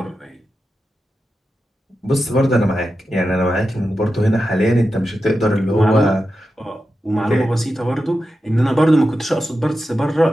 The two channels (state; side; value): normal; both; correlation 0.90